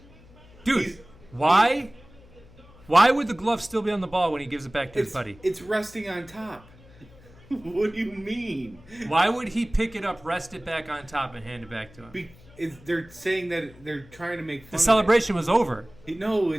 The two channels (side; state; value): left; noise; hum, 24 dB below the sound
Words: Dude, why would the glove still be on the ball when he gives it back to his buddy? It's resting on top. What do you mean? Why would he pick it up, rest it back on top, and hand it back to him? They're saying that they're trying to make fun The celebration was over. No,